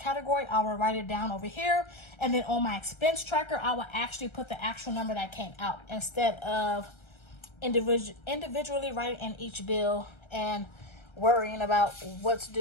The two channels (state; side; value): late; right; 1.3 ms